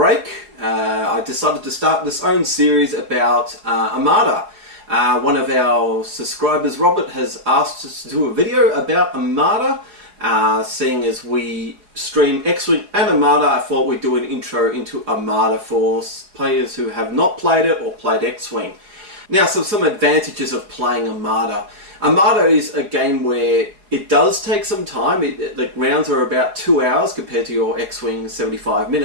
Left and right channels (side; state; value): left; late; 4.9 ms